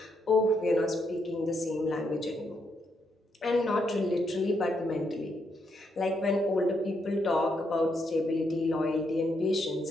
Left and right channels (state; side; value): normal; both; correlation 0.78